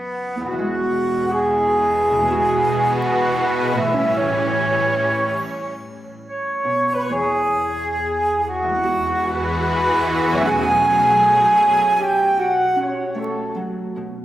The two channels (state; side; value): normal; both; correlation 0.91